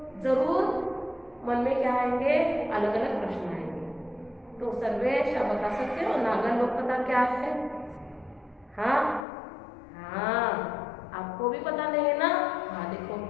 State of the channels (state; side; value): drops out; right; at 9.2 s